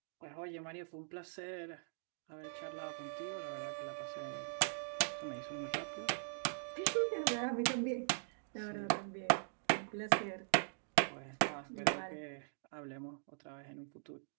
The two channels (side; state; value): left; silent; digital silence